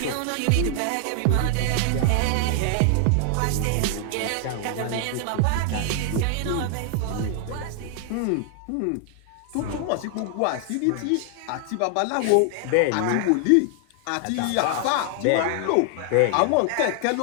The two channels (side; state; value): both; different; correlation 0.00